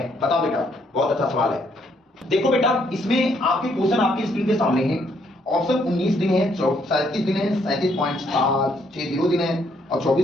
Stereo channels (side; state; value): both; normal; correlation 0.70